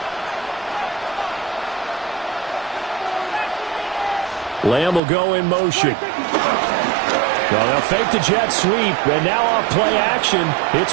Lamb will go in motion. Well, they'll fake the jet sweep, and now off play action,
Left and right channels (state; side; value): drops out; left; at 5.0 s